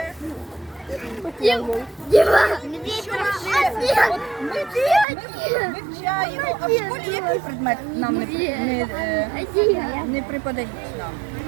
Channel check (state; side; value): drops out; left; at 5.1 s